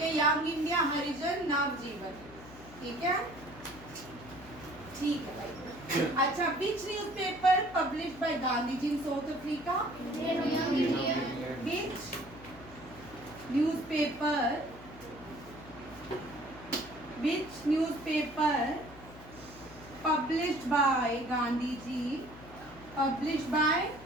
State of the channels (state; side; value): noise; left; hum, 18 dB below the sound